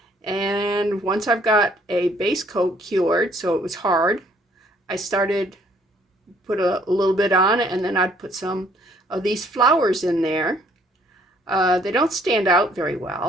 And once I've got a base coat cured, so it was hard, I started put a little bit on, and then I'd put some of these flowers in there. They don't stand out very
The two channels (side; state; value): both; normal; correlation 0.62